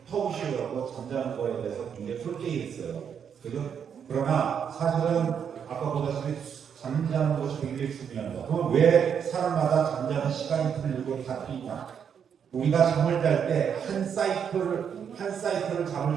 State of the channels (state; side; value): quieter; left; 7.7 dB